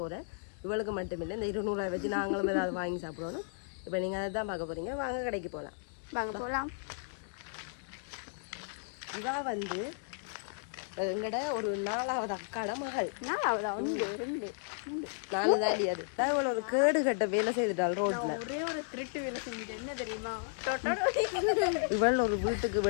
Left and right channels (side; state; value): right; silent; digital silence